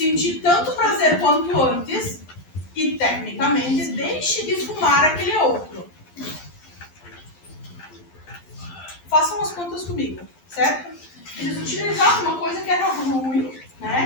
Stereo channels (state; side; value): late; right; 11 ms